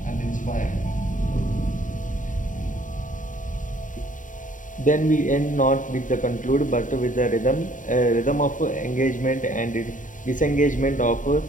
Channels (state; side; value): late; right; 0.38 ms